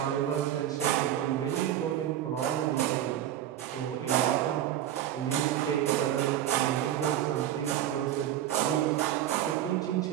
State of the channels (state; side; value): quieter; left; 11.6 dB